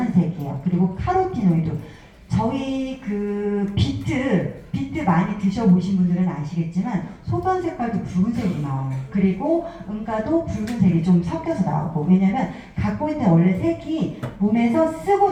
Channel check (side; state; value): both; identical; correlation 1.00